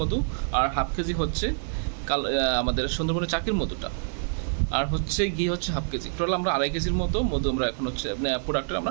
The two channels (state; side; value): silent; left; digital silence